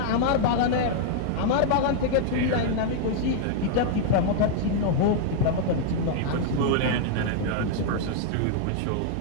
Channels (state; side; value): different; both; correlation -0.01